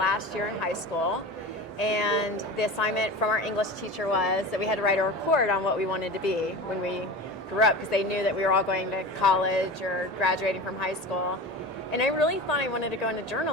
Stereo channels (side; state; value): both; normal; correlation 0.31